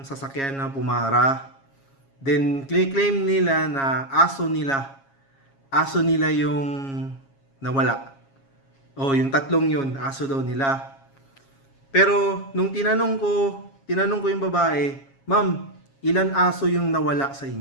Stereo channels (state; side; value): late; right; 7.3 ms